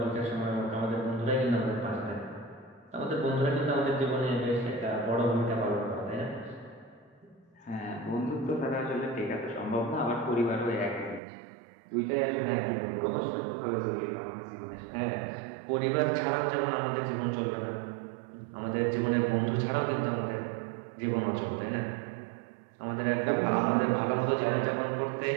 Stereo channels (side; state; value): left; drops out; at 11.2 s